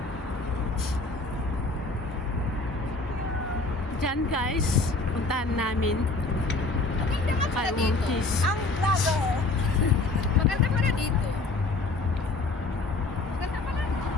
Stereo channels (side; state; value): right; quieter; 3.3 dB